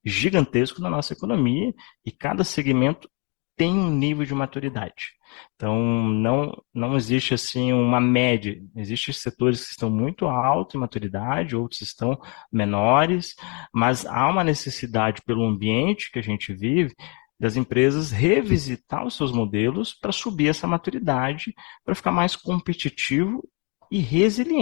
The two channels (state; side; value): quieter; right; 33.6 dB